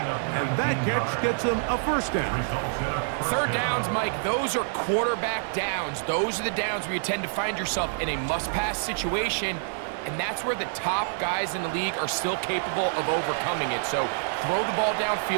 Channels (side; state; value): left; silent; digital silence